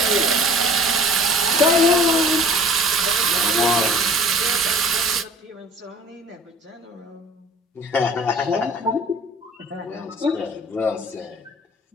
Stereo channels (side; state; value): both; normal; correlation 0.47